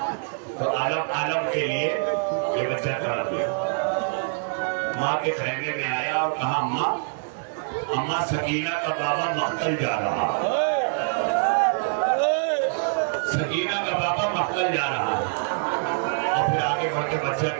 تو عالم کے لیے یہ بچہ طلب گیا۔ ماں کے خیمے میں آیا اور کہا اماں سکینہ کا بابا مقتل جا رہا ہے، سکینہ کا بابا مقتل جا رہا ہے۔ اور پھر آگے بڑھ کے بچہ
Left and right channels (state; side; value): silent; left; digital silence